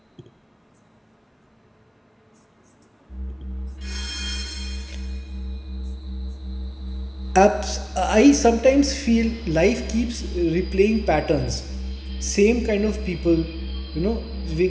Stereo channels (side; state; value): both; identical; correlation 1.00